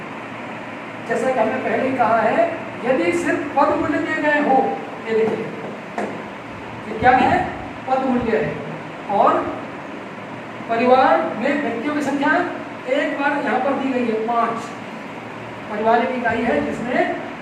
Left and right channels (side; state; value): both; identical; correlation 1.00